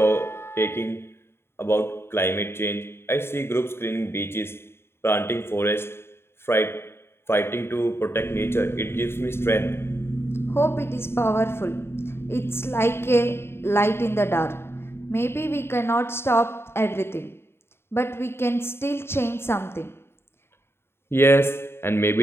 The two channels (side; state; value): right; late; 0.12 ms